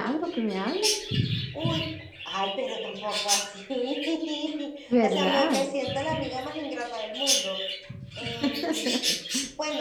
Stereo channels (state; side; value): identical; both; correlation 1.00